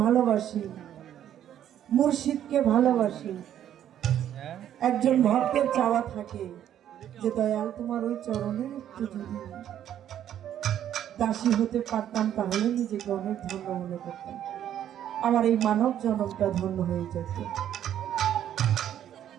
ভালোবাসি মুর্শিদকে ভালোবাসি একজন ভক্তের চাওয়া থাকে যে দয়াল তোমার ওই চরণের একটু যদি দাসী হতে পারতাম তাহলে নিজেকে অনেক ধন্য মনে করতাম, আমার এই মানব জনমটা ধন্য হয়ে যেত।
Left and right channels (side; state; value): left; quieter; 10.7 dB